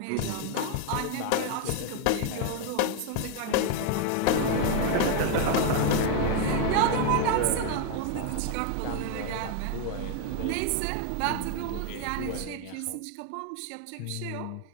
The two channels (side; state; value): both; different; correlation 0.01